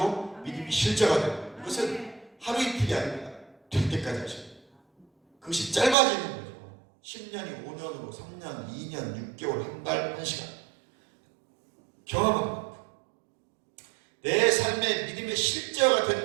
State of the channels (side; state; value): left; drops out; at 6.0 s